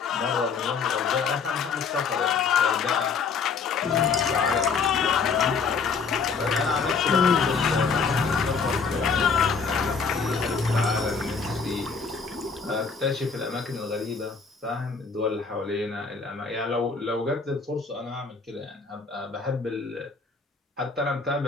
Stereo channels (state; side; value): quieter; right; 5.2 dB